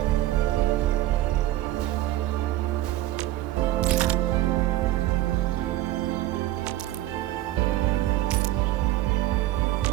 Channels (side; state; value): left; quieter; 14.9 dB